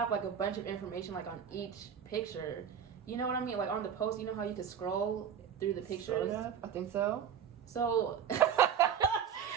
like a bunch of information like on each picture. You know what I mean? Like on the post, you know how you can scroll through the pictures? Sort of. I think so. So I'm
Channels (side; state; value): left; quieter; 8.2 dB